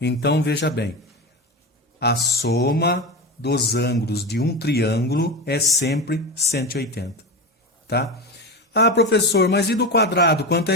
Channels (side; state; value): both; normal; correlation 0.21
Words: veja bem. A soma dos ângulos de um triângulo é sempre 180. Tá? Ah, professor, mas e do quadrado? Quanto